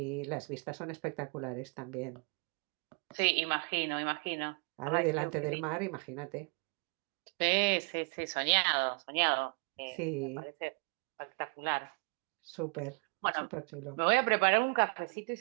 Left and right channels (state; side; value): quieter; left; 34.2 dB